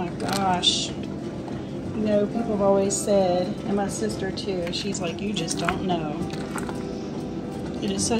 gosh. You know, people have always said, and my sister too, she's like, you just don't know. It is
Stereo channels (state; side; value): identical; both; correlation 1.00